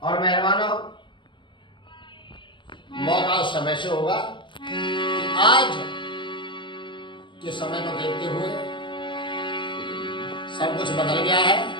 और मेहरबानों, मौका उस समय से होगा कि आज के समय को देखते हुए सब कुछ बदल गया है।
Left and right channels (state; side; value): late; right; 0.23 ms